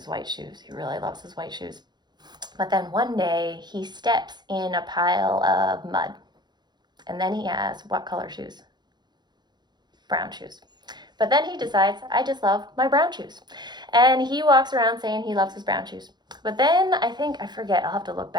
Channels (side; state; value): left; late; 0.21 ms